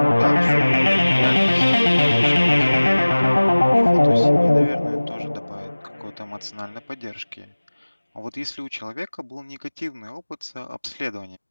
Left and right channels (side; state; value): both; inverted; correlation -1.00